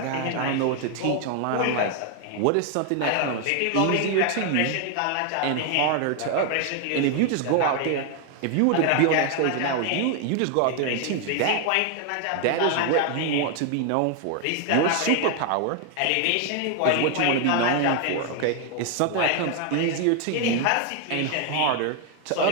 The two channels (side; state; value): both; different; correlation 0.01